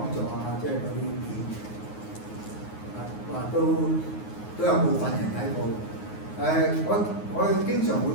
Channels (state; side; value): late; right; 9.5 ms